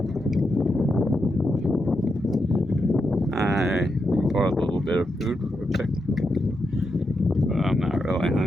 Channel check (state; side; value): normal; both; correlation 0.85